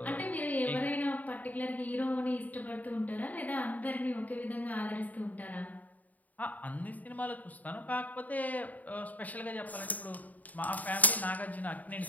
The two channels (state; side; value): late; right; 0.076 ms